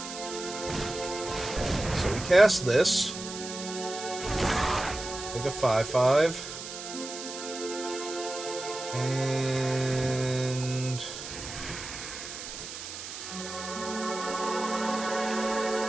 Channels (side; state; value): right; noise; hiss, 9 dB below the sound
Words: So we cast this. Take a 5/5. And...